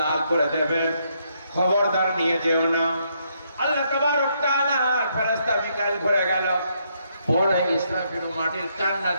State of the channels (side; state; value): both; inverted; correlation -0.74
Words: করে দেবেন। খবরদার নিয়ে যেও না। আল্লাহ তাবারক তাআলা ফেরেশতা মিকাইল ঘুরে গেল, পরে ইসরাফিল মাটির কান্না